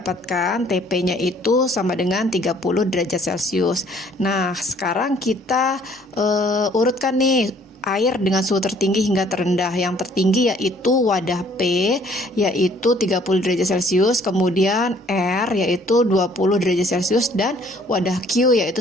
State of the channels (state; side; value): normal; both; correlation 0.59